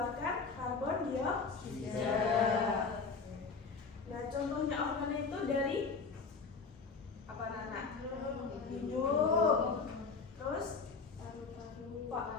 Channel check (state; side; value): quieter; right; 4.8 dB